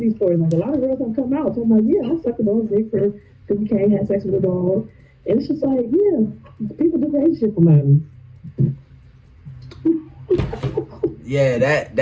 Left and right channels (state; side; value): identical; both; correlation 1.00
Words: these stories. Like, a lot of girls have come out talking about, yeah, I sucked a dog's dick for 50K, had sex with a dog. And it's just like, yeah, people do crazy shit for money. Yeah,